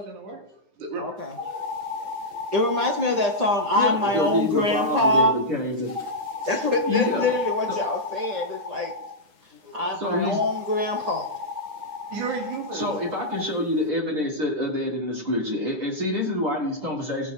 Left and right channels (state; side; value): late; left; 9.9 ms